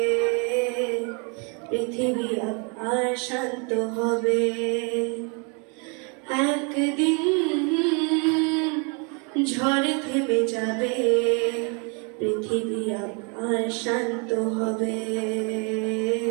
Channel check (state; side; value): quieter; left; 34.8 dB